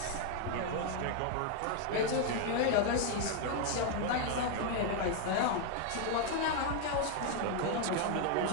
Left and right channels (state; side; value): different; both; correlation 0.00